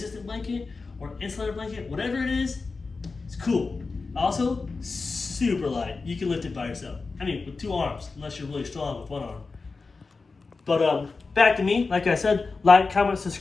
blanket, or insulator blanket, whatever it is. It's cool. Also, super light. You can lift it by yourself. I mean, with 2 arms, unless you're really strong with 1 arm. But back to me. Like I said, like, comment,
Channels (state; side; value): quieter; right; 4.2 dB